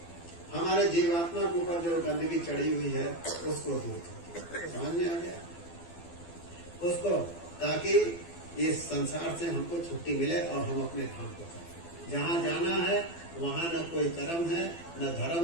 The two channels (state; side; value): late; right; 12 ms